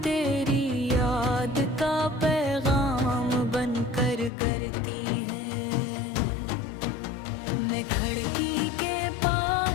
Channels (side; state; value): right; drops out; at 4.3 s